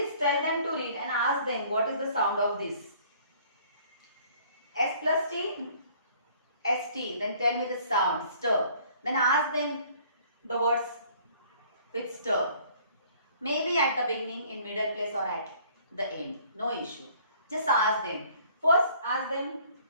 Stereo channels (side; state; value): both; inverted; correlation -0.56